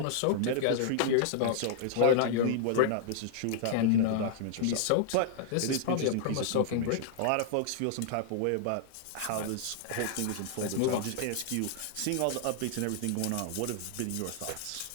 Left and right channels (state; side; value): different; both; correlation -0.01